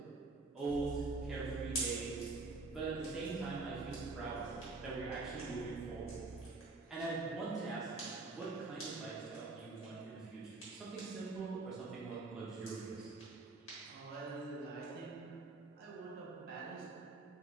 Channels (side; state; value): left; quieter; 3.5 dB